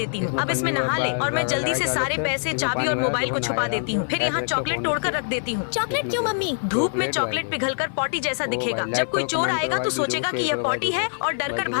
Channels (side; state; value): right; silent; 63 dB below the other